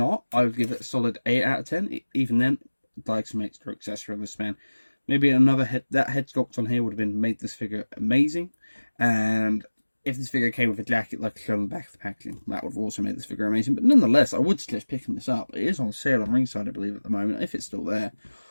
I would give it a solid 8 out of 10. Even then, I'd like some extra accessory on this man. Maybe another that head sculpt on here would have made this figure amazing. And if this figure came with a jacket like shown on the back of the packaging, that would have also made this figure amazing. But nonetheless, I would suggest picking this up. It is on sale on Ringside, I believe, at the moment. If it's still there,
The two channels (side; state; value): both; inverted; correlation -1.00